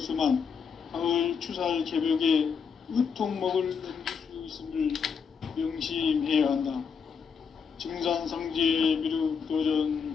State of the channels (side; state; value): right; quieter; 6.2 dB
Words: 가을 추살 개벽에 의통목을 넘길 수 있음을 명심해야 한다. 증산상제 미륵도전